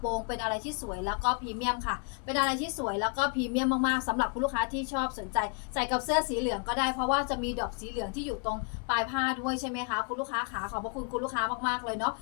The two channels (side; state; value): right; quieter; 36.4 dB